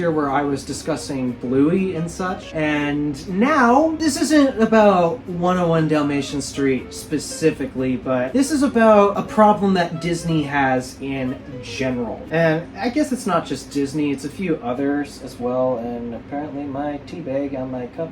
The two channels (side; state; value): both; identical; correlation 1.00